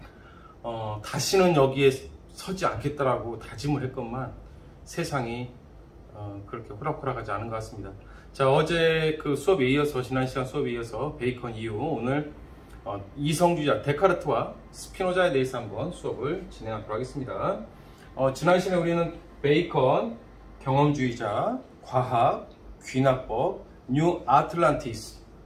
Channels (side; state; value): both; identical; correlation 1.00